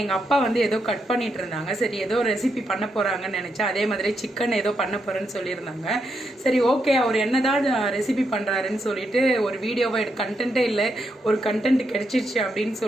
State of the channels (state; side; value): normal; both; correlation 0.81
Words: எங்கள் அப்பா வந்து ஏதோ கட் பண்ணிட்டு இருந்தாங்க. சரி ஏதோ ரெசிபி பண்ண போகிறாங்கன்னு நினச்சேன். அதே மாதிரி சிக்கன் ஏதோ பண்ண போகிறேன்னு சொல்லியிருந்தாங்க. சரி ஓகே, அவர் என்னதான் ரெசிபி பண்ணுறாருன்னு சொல்லிட்டு ஒரு வீடியோவை கண்டென்ட்டே இல்லை, ஒரு கண்டென்ட் கிடைச்சிருச்சு அப்படின்னு